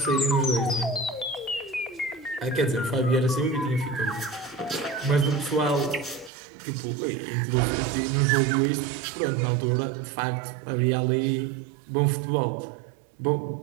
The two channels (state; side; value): drops out; left; at 6.3 s